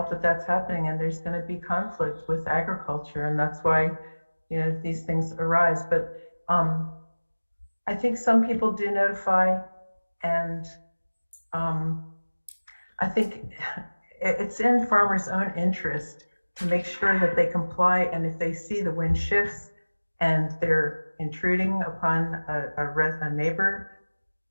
that that's happening, and there's going to be conflict with agriculture, and that's why, these things arise. But I think some people do notify, and I think it's in farmers' own interest to make sure that they comply, and if they see the wind shifts and they're intruding upon a neighbor,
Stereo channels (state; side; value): inverted; both; correlation -1.00